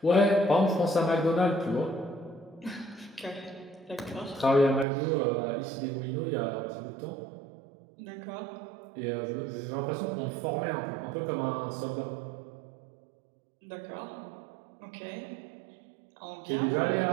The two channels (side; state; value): left; drops out; at 4.9 s